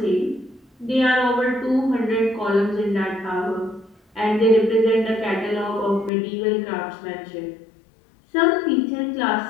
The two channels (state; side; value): drops out; right; at 6.1 s